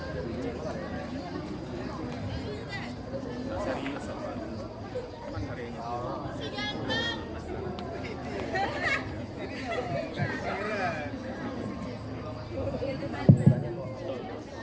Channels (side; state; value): both; identical; correlation 1.00